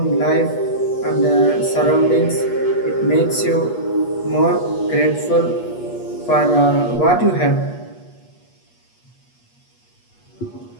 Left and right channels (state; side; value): late; right; 8.4 ms